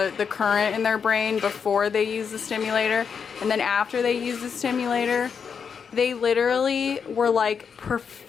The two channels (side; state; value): right; quieter; 6.5 dB